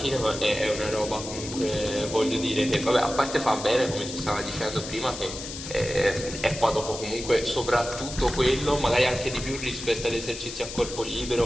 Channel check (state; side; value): noise; left; hiss, 9 dB below the sound